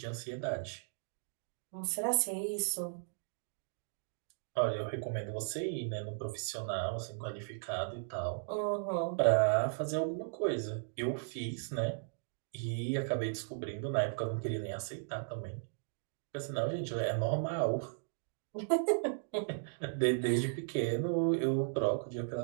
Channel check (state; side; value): silent; left; digital silence